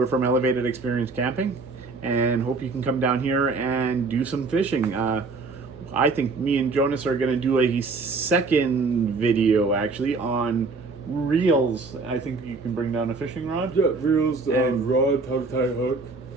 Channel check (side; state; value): left; quieter; 4.0 dB